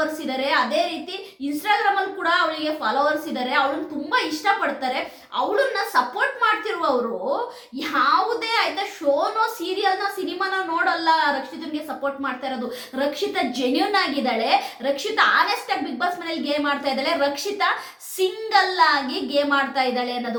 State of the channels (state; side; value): identical; both; correlation 1.00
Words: ಇದ್ದಾರೆ. ಅದೇ ರೀತಿ ಇನ್ಸ್ಟಾಗ್ರಾಮ್ ಅಲ್ಲಿ ಕೂಡ ಅವಳಿಗೆ ಫಾಲೋವರ್ಸ್ ಇದ್ದಾರೆ. ಅವಳನ್ನ ತುಂಬಾ ಇಷ್ಟಪಡ್ತಾರೆ. ಅವಳನ್ನ ಸಪೋರ್ಟ್ ಮಾಡ್ತಿರುವವರು ಯಾವುದೇ ಆಯ್ತಾ ಶೋನೋ ಸೀರಿಯಲ್ನೋ ಸಿನಿಮಾನೋ ನೋಡಲ್ಲ, ರಕ್ಷಿತನ್ಗೆ ಸಪೋರ್ಟ್ ಮಾಡ್ತಾ ಇರೋದು. ರಕ್ಷಿತಾ ಜೆನ್ಯೂನ್ ಆಗಿದ್ದಾಳೆ, ರಕ್ಷಿತಾ ಆನೆಸ್ಟ್ ಆಗಿ ಬಿಗ್ ಬಾಸ್ ಮನೇಲಿ ಗೇಮ್ ಮಾಡ್ತಾ ಇದ್ದಾಳೆ, ರಕ್ಷಿತಾ ಸಿಂಗಲ್ ಆಗಿ ಗೇಮ್ ಆಡ್ತಾ ಇದ್ದಾಳೆ